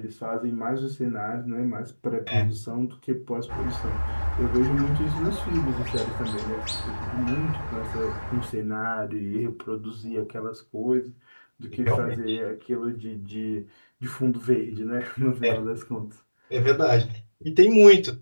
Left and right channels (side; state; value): both; inverted; correlation -1.00